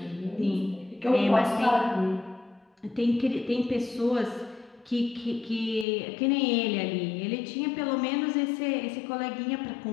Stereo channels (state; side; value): drops out; right; at 5.9 s